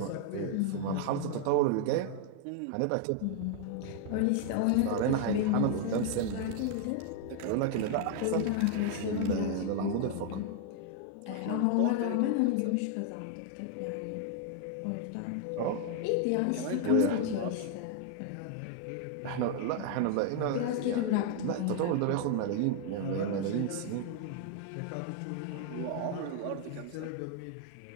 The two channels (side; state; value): both; different; correlation 0.00